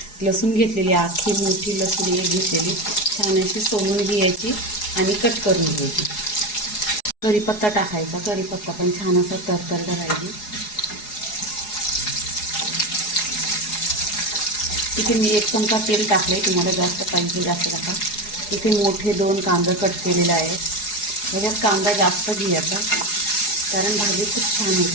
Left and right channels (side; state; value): right; late; 4.8 ms